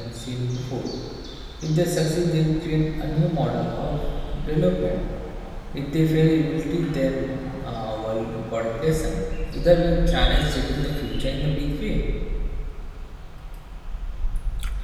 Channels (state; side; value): identical; both; correlation 1.00